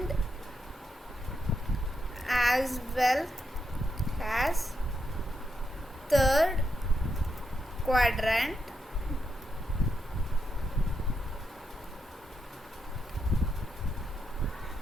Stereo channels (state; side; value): normal; both; correlation 0.82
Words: as well as third quadrant